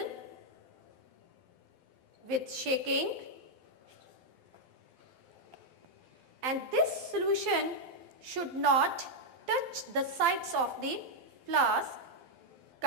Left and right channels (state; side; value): late; left; 12 ms